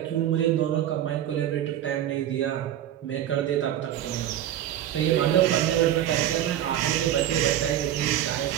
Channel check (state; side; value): quieter; left; 11.6 dB